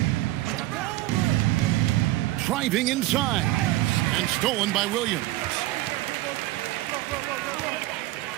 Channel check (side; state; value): left; quieter; 16.8 dB